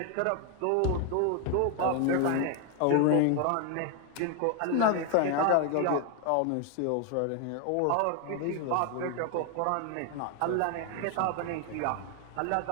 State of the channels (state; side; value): different; both; correlation 0.01